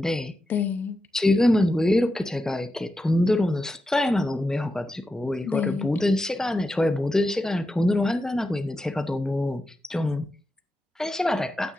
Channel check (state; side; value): normal; both; correlation 0.89